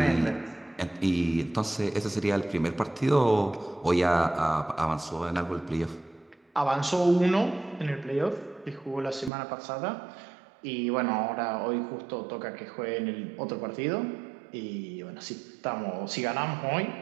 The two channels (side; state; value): left; drops out; at 9.3 s